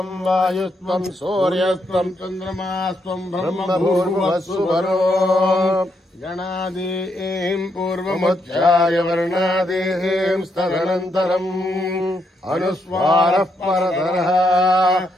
వాయుస్త్వం సూర్యస్త్వం చంద్రమాస్త్వం బ్రహ్మభూర్భువస్సువరో. గణాదీం పూర్వముచ్చాయ వర్ణాదీం స్తదనంతరం అనుస్వారః పరతరః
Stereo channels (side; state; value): both; normal; correlation 0.78